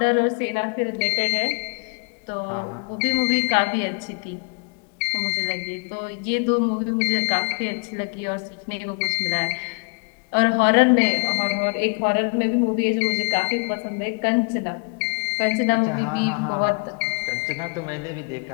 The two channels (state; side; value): quieter; right; 34.4 dB